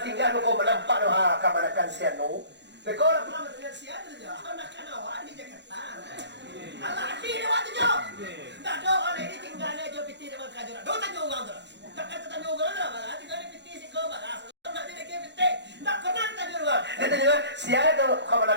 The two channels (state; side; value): late; left; 0.51 ms